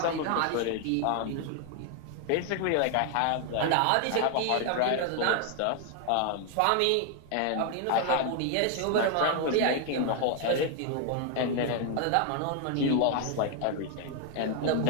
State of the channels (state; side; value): different; both; correlation 0.00